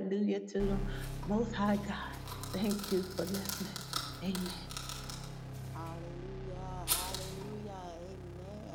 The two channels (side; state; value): both; identical; correlation 1.00